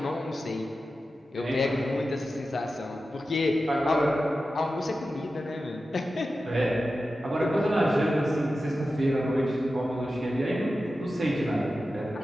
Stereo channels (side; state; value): both; normal; correlation 0.93